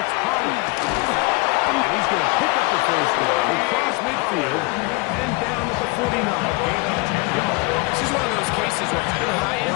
Pollard. And he's going to pick up the first down across midfield and down at the 49. Gain of 10 yards. This is one of those cases where having high-end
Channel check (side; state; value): right; quieter; 26.2 dB